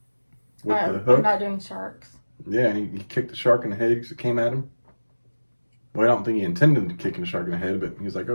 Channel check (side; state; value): both; inverted; correlation -1.00